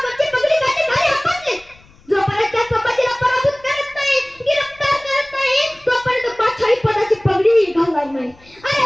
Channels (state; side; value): noise; left; rumble, 28 dB below the sound